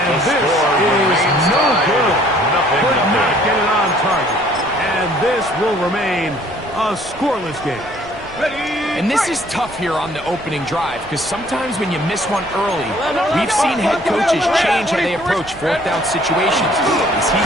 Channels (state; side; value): noise; right; rumble, 20 dB below the sound